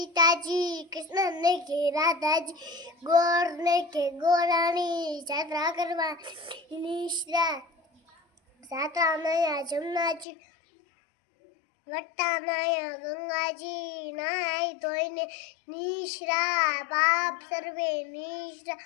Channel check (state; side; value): drops out; right; at 10.2 s